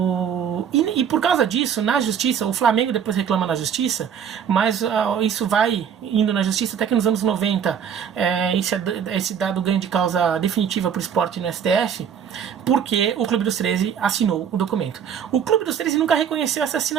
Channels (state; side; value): quieter; left; 8.1 dB